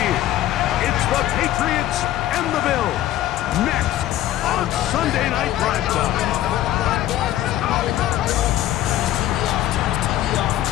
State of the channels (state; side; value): quieter; right; 13.5 dB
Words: year. It's the Patriots and the Bills. Next on Sunday Night Primetime.